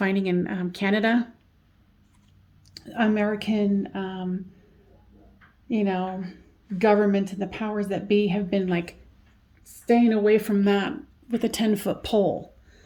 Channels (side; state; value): both; identical; correlation 1.00